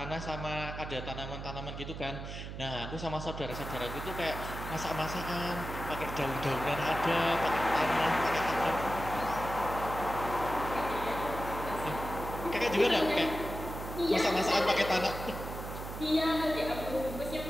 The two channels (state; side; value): noise; right; hum, 8 dB below the sound